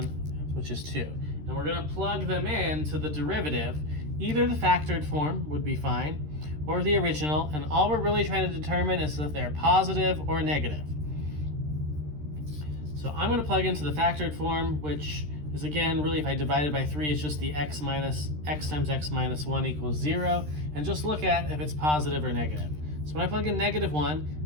which is 2. And we're going to plug them in to the derivative. Either the factored form would be fine, or the original, and all we're really trying to determine is if they're positive or negative. So I'm going to plug into the factored form, which is, again, really if I divide it by 3, it's just the x times x minus 1 equals 0, and just look at if it's positive or negative. So when I plug in -1,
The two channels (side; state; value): left; late; 13 ms